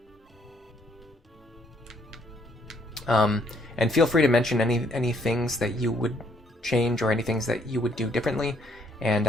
And feel free to mention any things that you would change or any things that you would do differently. And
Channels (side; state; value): both; normal; correlation 0.68